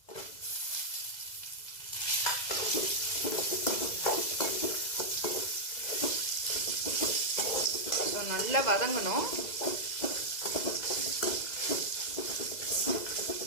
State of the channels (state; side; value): late; right; 2.0 ms